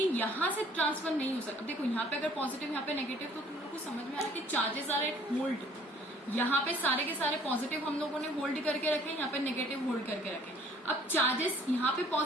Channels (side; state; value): both; normal; correlation 0.56